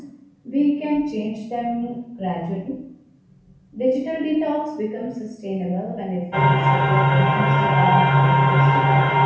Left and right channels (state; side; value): identical; both; correlation 1.00